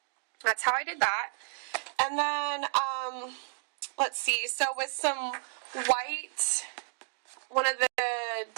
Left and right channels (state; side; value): silent; left; 57 dB below the other